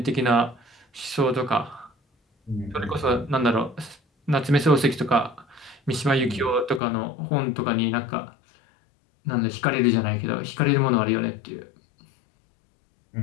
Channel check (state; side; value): drops out; right; at 6.8 s